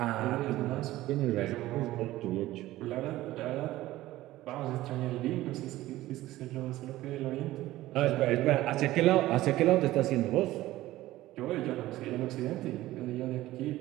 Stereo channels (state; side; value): quieter; left; 16.2 dB